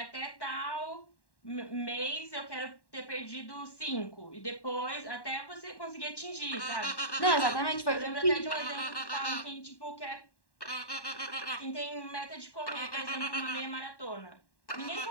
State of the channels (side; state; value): right; late; 1.1 ms